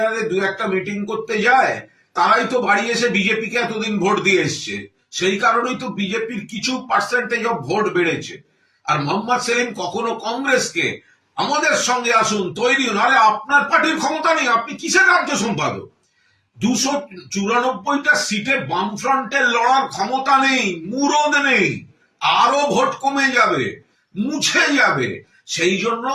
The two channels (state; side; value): identical; both; correlation 1.00